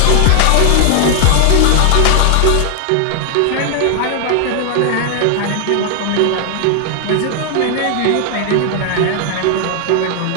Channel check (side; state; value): both; different; correlation 0.00